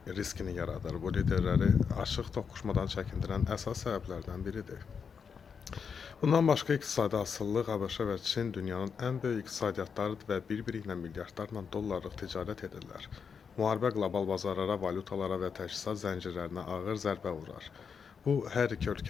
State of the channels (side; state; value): right; quieter; 6.3 dB